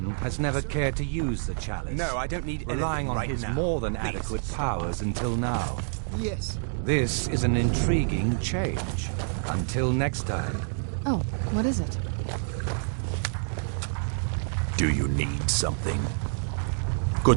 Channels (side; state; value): left; silent; digital silence